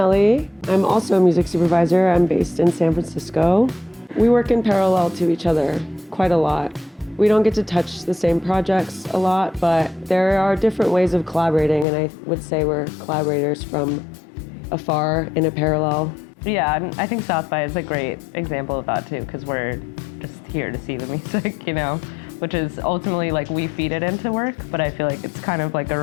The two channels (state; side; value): drops out; right; at 11.9 s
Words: I'm also a music supervisor. I'm based in San Francisco. We work in parallel to each other quite a lot. We don't get to touch the same projects a lot, but there are different ways of collaborating, and I would say we're collaborators from afar in a parallel. Yeah, and I think South by is a great example of that too, because we're just here to see the music, you know, which is ultimately like we feed it into work, but I feel like it's kind of like a